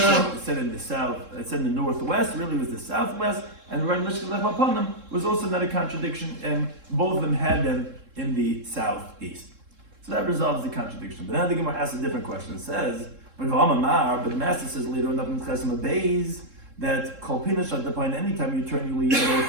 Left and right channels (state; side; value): late; left; 3.7 ms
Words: it said in the south, it said in the northwest, really was the southwest, and regarding Lishkas Lechem Apanim was also not a contradiction, and both of them had them in the southeast. So that resolves the contradiction. But now the Gemara asks a different question. It says, but the master says later on in Chesem Beis that Kol Pinish at the point, anytime you turn your lead,